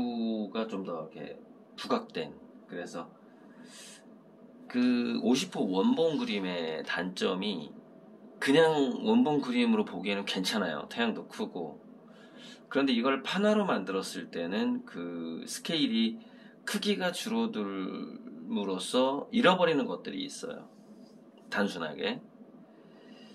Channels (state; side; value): identical; both; correlation 1.00